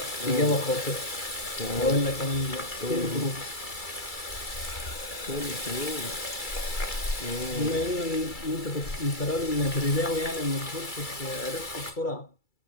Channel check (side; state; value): right; late; 2.3 ms